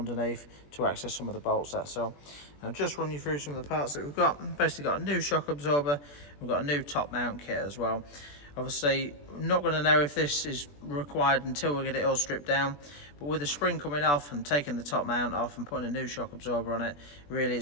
to access some of the bolts, that's all. I'll just run you through some of the parts that we've got. Basically got a new shock absorber, we've got a new top mount kit as well. Obviously, I'm not going to know if this is required until we get it all stripped down, but with the spring coming off and taking the top mount off and putting a new shock absorber on it, really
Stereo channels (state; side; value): late; right; 21 ms